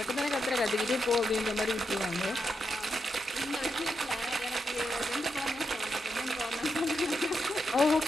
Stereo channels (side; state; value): both; normal; correlation 0.84